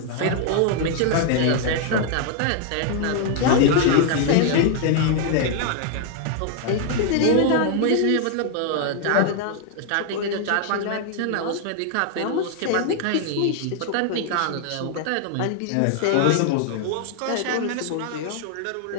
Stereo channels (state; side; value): different; both; correlation 0.00